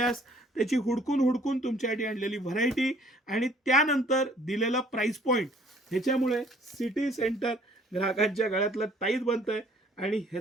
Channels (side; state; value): both; normal; correlation 0.58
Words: त्याची हुडकून तुमच्यासाठी आणलेली व्हरायटी आणि त्यानंतर दिलेला प्राइस पॉईंट, ह्याच्यामुळे सिटी सेंटर ग्राहकांच्या गळ्यातलं ताईत बनतंय आणि